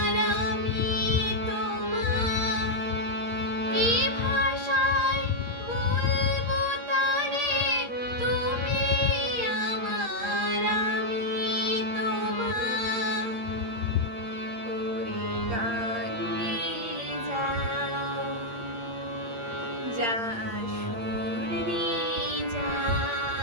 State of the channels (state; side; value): late; left; 8.7 ms